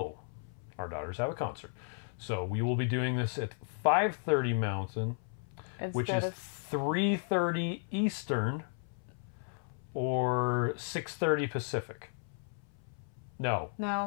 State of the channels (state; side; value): silent; right; 55 dB below the other